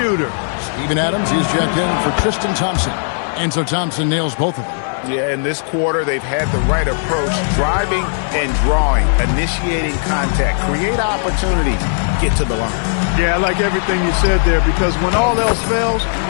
Steven Adams, he's checked in for Tristan Thompson. And so Thompson nails both of them. Yeah, in this quarter, they've had the right approach, driving and drawing, initiating contact, create opportunity, get to the line. Yeah, I like everything you said there, because when all else fails,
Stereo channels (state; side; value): silent; right; digital silence